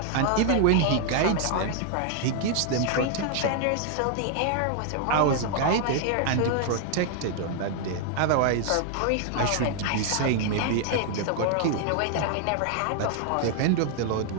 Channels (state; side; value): different; both; correlation 0.00